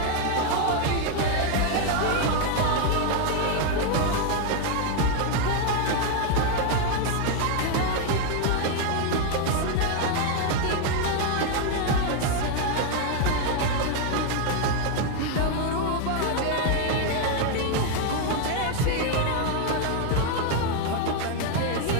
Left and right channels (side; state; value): both; different; correlation 0.01